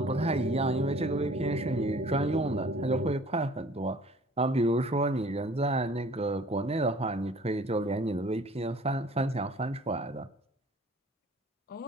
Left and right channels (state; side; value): normal; both; correlation 0.50